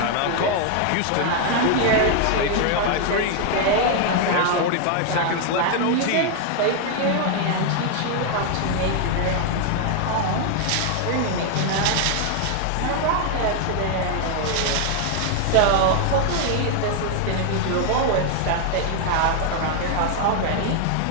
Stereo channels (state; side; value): different; both; correlation 0.00